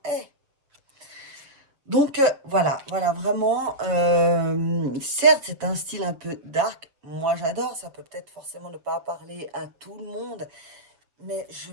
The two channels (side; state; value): left; late; 7.1 ms